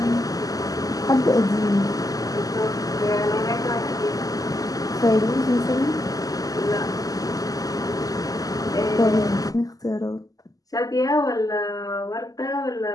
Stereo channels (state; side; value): late; right; 0.17 ms